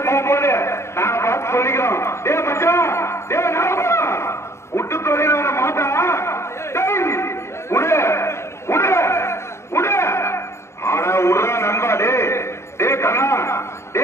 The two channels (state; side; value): late; right; 0.13 ms